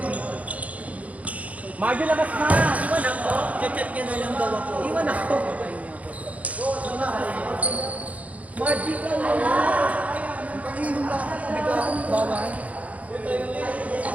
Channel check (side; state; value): left; late; 0.068 ms